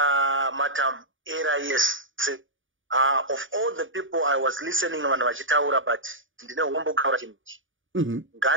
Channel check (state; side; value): late; left; 0.57 ms